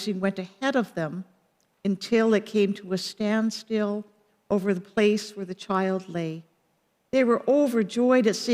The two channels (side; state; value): both; identical; correlation 1.00